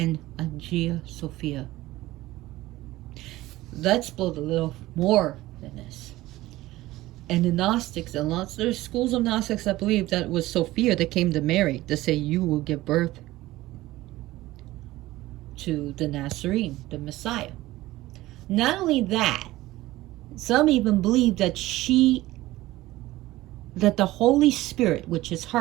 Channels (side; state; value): left; quieter; 17.3 dB